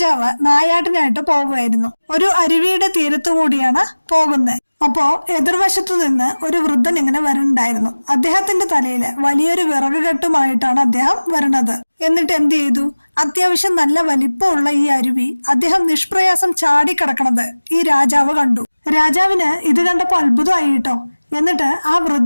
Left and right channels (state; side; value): inverted; both; correlation -1.00